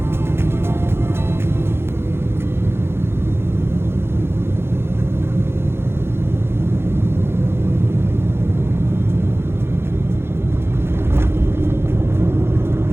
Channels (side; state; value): left; late; 0.12 ms